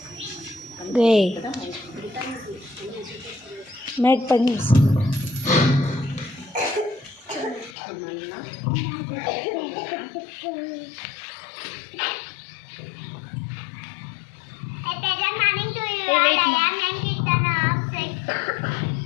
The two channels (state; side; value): drops out; right; at 7.8 s